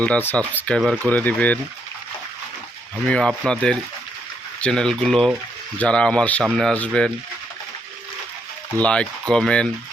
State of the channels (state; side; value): normal; both; correlation 0.76